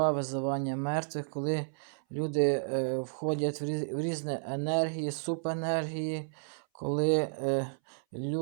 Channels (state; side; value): silent; left; 56 dB below the other